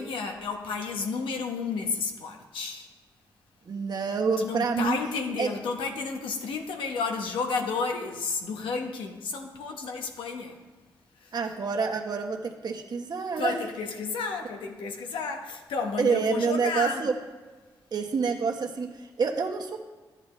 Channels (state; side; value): normal; both; correlation 0.53